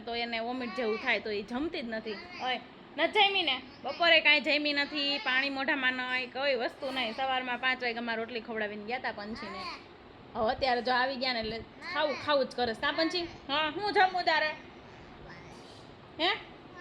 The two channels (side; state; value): both; identical; correlation 1.00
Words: તો એને વોમિટ જેવું થાય તો એ જમતી જ નથી. હોય ન જમી ને બપોરે કાંઈ જમી નથી. પાણી મોઢામાં નહીં, કોઈ વસ્તુ નહીં. સવારમાં 5 વાગ્યામાં રોટલી ખવડાવીને ગયા હતા પંછીને. હવે અત્યારે જો આવી ગયા ને એટલે ખાવું જ કરે. કા પંછી? હા હું જમું તારે? હે